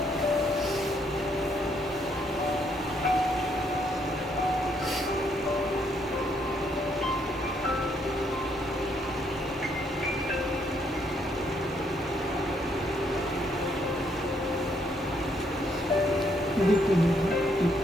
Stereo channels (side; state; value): both; normal; correlation 0.71